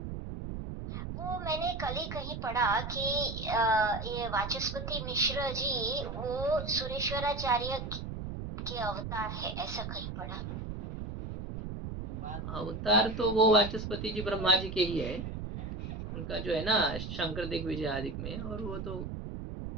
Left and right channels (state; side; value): noise; right; rumble, 6 dB below the sound